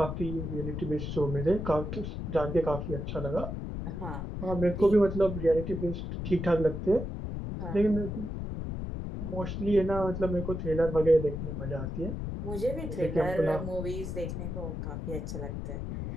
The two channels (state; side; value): noise; left; rumble, 5 dB below the sound